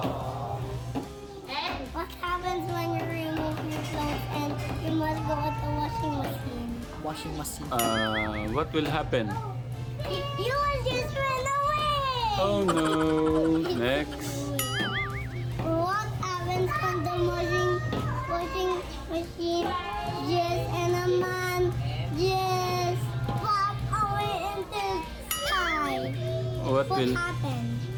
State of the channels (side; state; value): both; identical; correlation 1.00